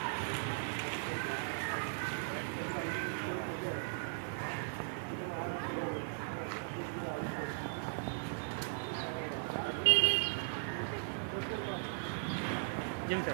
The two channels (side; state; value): left; silent; 52 dB below the other